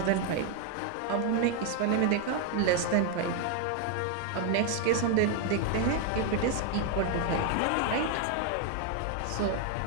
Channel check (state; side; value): different; both; correlation 0.01